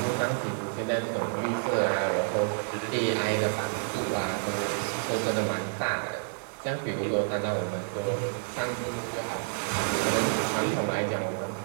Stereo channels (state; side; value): silent; left; digital silence